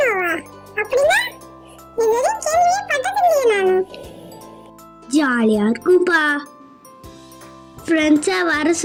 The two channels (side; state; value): both; identical; correlation 1.00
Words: நோவா? அப்படின்னா இதுவரை கேள்வியே பட்டதில்லையே நானு. ஜாலியா இருக்கும்பா. ஃப்ரெண்ட்ஸா வர